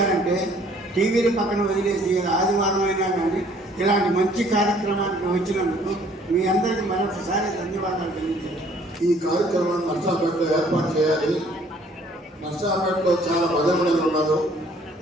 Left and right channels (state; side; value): normal; both; correlation 0.59